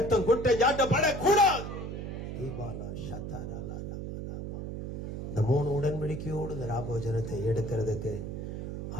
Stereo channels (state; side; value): noise; right; hum, 6 dB below the sound